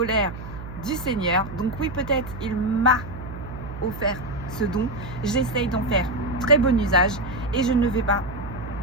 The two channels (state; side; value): noise; right; hum, 11 dB below the sound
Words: du Seigneur. Donc oui, peut-être il m'a offert ce don. J'essaye d'en faire très bon usage et je ne vais pas